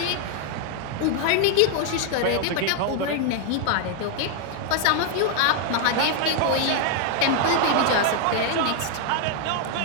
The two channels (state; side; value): different; both; correlation 0.00